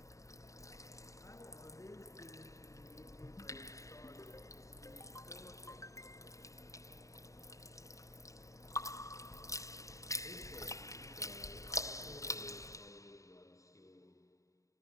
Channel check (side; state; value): right; late; 0.16 ms